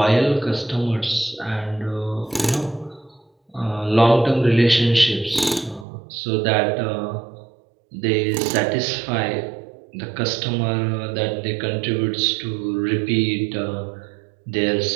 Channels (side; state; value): left; drops out; at 5.9 s